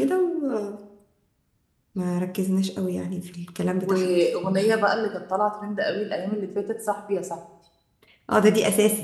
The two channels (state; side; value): identical; both; correlation 1.00